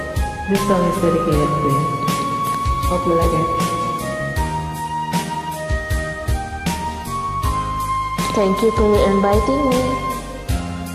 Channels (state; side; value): identical; both; correlation 1.00